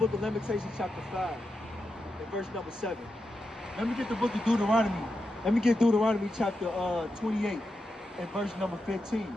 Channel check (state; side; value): normal; both; correlation 0.88